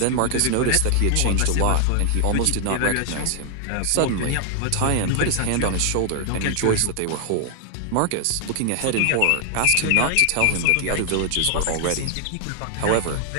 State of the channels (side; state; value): both; different; correlation 0.00